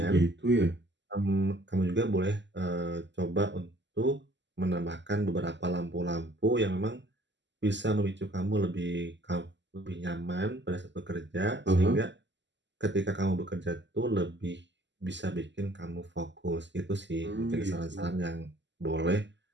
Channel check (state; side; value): late; left; 0.52 ms